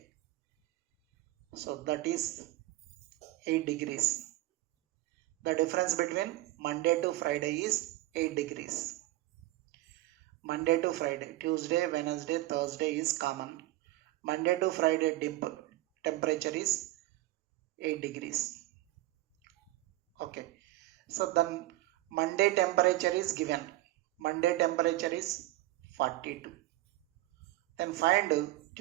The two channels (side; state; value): left; quieter; 17.5 dB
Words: so that is 8 degrees. The difference between Monday to Friday is 8 degrees. Monday to Friday, Tuesday, Wednesday, Thursday is common. Monday to Friday temperature is 8 degrees. Okay, so then Monday temperature is given. Monday temperature is 42. Then find